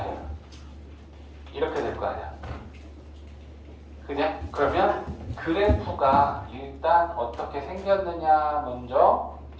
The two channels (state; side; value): identical; both; correlation 1.00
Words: 될 거 아니야. 그죠? 그러면 그래프가 일단 어떻게 생겼느냐 먼저